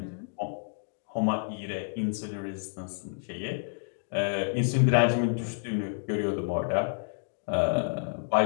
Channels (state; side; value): silent; right; digital silence